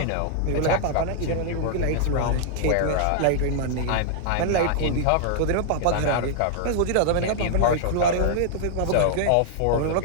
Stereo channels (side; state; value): both; different; correlation -0.01